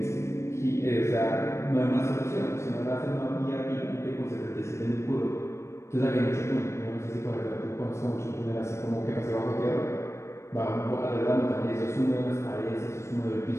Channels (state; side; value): late; right; 0.13 ms